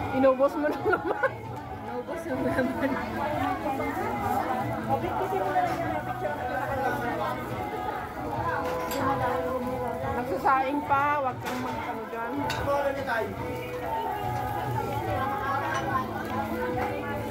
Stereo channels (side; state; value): both; identical; correlation 1.00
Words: Inubos mo na naman. Naubos yung naman. Okay, kasi mo na lang yung picture na Nagsasaing pa, wag kang mag-ano dyan. Ano niya tayo?